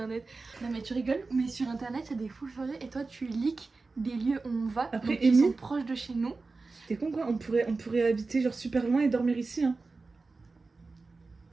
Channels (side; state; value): left; quieter; 3.8 dB